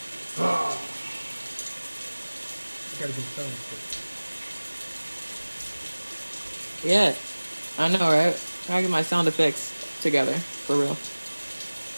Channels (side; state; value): both; inverted; correlation -1.00